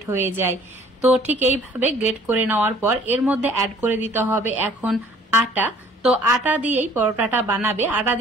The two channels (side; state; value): both; normal; correlation 0.55